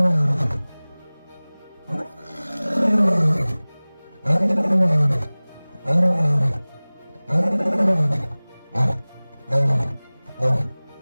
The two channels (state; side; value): inverted; both; correlation -1.00